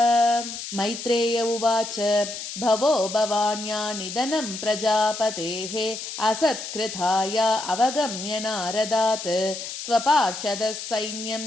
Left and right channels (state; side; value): noise; left; hiss, 8 dB below the sound